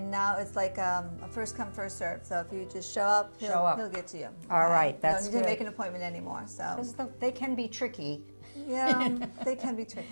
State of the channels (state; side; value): inverted; both; correlation -1.00